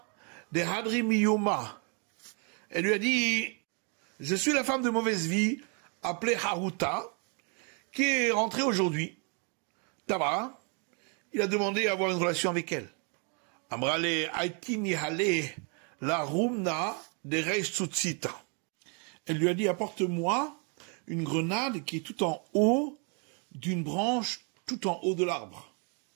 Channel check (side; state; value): left; quieter; 37.3 dB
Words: de Hadri Miyoma. Elle lui a dit, je suis la femme de mauvaise vie, appelée Haruta, qui est rentrée aujourd'hui. Tabara, il a demandé à avoir une relation avec elle. Amrale Aitini Hale la Rumna de Reis Tsutsita. Elle lui a dit, apporte-moi une grenade qui est tout en haut d'une branche, tout en haut de l'arbre.